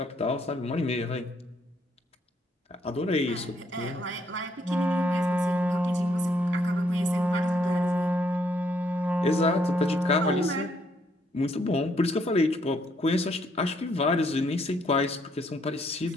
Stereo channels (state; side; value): normal; both; correlation 0.71